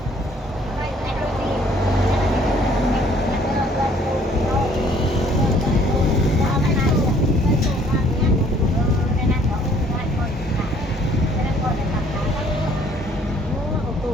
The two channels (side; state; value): both; normal; correlation 0.60